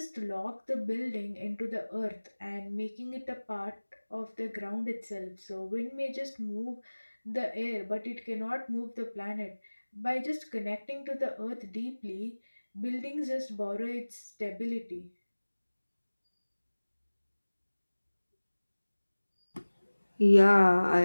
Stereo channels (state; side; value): inverted; both; correlation -1.00